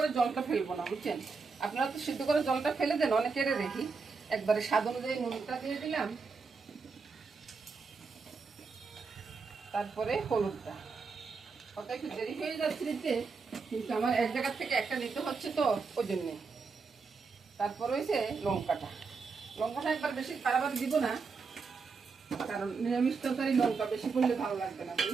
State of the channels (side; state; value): left; quieter; 4.8 dB